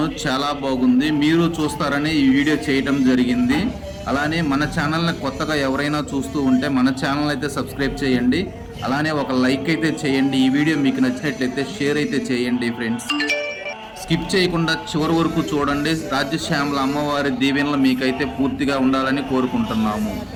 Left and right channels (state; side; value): identical; both; correlation 1.00